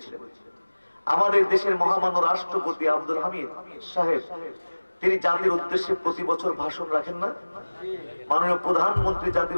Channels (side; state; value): both; inverted; correlation -1.00